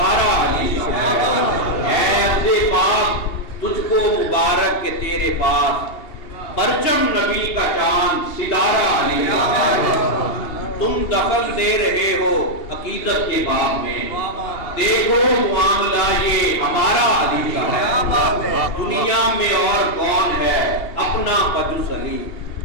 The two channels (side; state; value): right; late; 2.8 ms